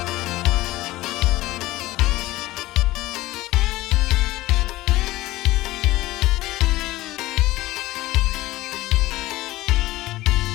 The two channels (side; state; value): right; quieter; 17.7 dB